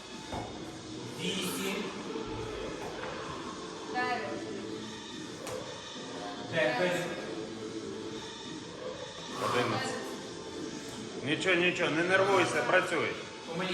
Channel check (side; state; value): both; identical; correlation 1.00